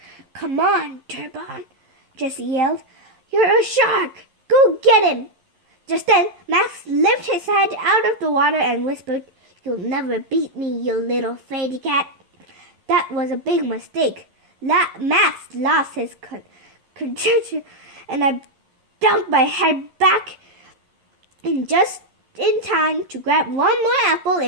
Come on, Turbon, Jessie yelled. You're a shark! Go get him! Just then, Max lifted his head out of the water and whispered, You'll never beat me, you little Fraidy-Cat. That was a big mistake. Max lost his concentration, and I dunked my head back just in time to grab one more apple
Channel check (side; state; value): left; late; 11 ms